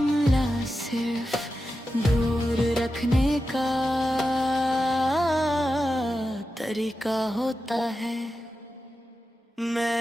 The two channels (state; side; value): normal; both; correlation 0.91